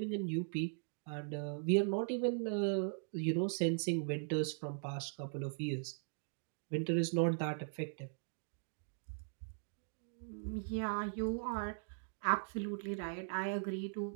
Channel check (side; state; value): left; silent; digital silence